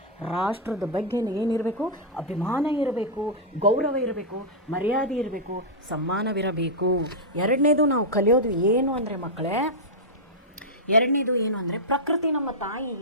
ರಾಷ್ಟ್ರದ ಬಗ್ಗೆ ಏನಿರಬೇಕು, ಅಭಿಮಾನ ಇರಬೇಕು, ಗೌರವ ಇರಬೇಕು, ಮರ್ಯಾದೆ ಇರಬೇಕು, ಸಮ್ಮಾನವಿರಬೇಕು. 2ನೇದು ನಾವು ಕಲಿಯೋದು ಏನು ಅಂದರೆ ಮಕ್ಕಳೇ, 2ನೇದು ಏನು ಅಂದರೆ ಪ್ರಕೃತಿ ನಮ್ಮ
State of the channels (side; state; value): both; normal; correlation -0.08